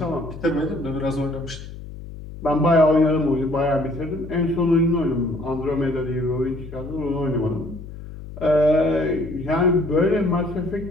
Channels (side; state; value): left; noise; hum, 13 dB below the sound